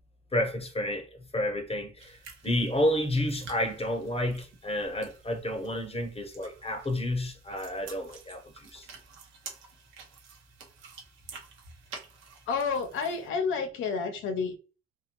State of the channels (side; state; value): both; normal; correlation 0.50